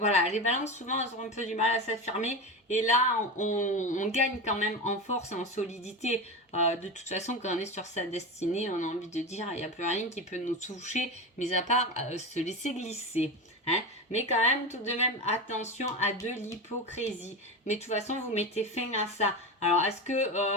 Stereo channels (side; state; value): both; normal; correlation 0.22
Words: les balances souvent elles ont un peu du mal à s'affirmer et là on gagne quand même en force et en solidité. De toute façon quand on est sur sa destinée on a envie de dire il n'y a plus rien qui peut nous toucher mis à part se laisser glisser hein. Mais quand même tout de même attention à de l'hypocrisie, mais de toute façon vous mettez fin à ça. Alors est-ce